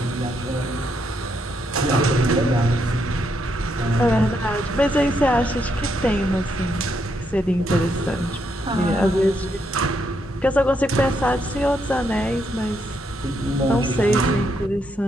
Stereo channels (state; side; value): normal; both; correlation 0.77